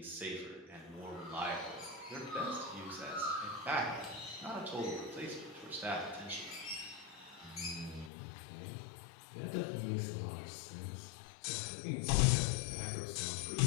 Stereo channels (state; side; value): drops out; right; at 8.1 s